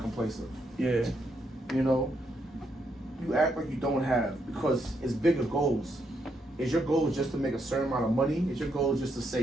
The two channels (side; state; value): both; normal; correlation 0.78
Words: complacent. Yeah. You know, you act like you don't have because it's bigger goals. Is your goal just to make a certain amount of money? Is your goal just to